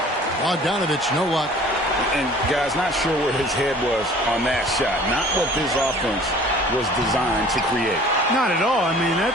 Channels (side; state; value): both; normal; correlation 0.49